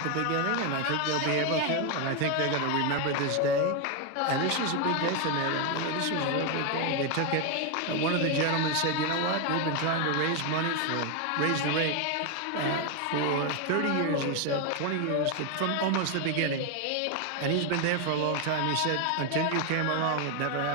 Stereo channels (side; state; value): both; different; correlation 0.01